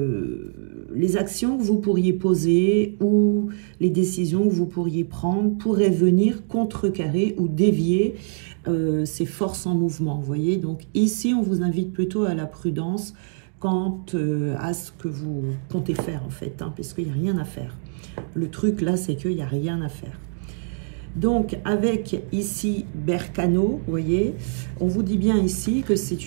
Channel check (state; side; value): silent; left; 63 dB below the other